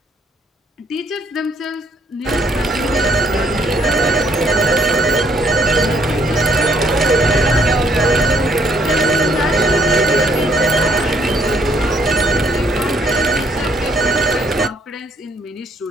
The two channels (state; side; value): normal; both; correlation 0.67